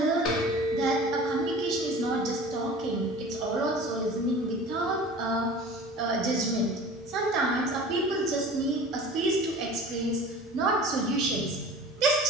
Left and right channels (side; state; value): both; normal; correlation 0.40